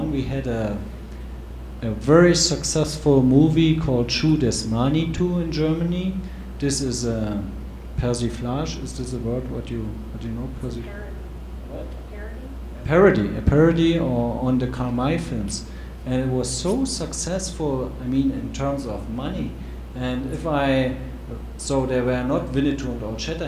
we had a very successful movie called Schuh des Manitou in Germany. This is a persiflage. Is this a word? What do you know? A parody on the Karl May films, and it was so successful. I mean, in terms of money. And so there were not Winnetou and Old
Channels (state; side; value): identical; both; correlation 1.00